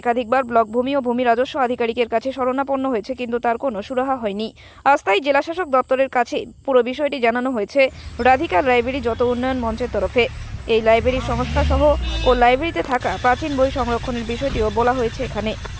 একাধিকবার ব্লক ভূমি ও ভূমি রাজস্ব আধিকারিকের কাছে শরণাপন্ন হয়েছে, কিন্তু তার কোনো সুরাহা হয়নি। আজ তাই জেলাশাসক দপ্তরের কাছে পুরো বিষয়টি জানানো হয়েছে রাধিকা লাইব্রেরি যত উন্নয়ন মঞ্চের তরফে। এই লাইব্রেরির সংস্থা সহ ও লাইব্রেরিতে থাকা প্রাচীন বই সংরক্ষণের বিষয়টিও বলা হয়েছে এখানে।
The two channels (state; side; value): identical; both; correlation 1.00